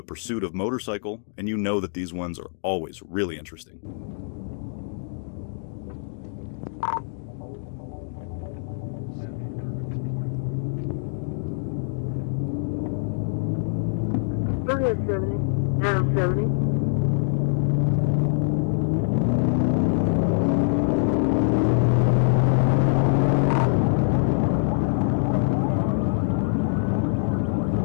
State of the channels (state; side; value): silent; right; digital silence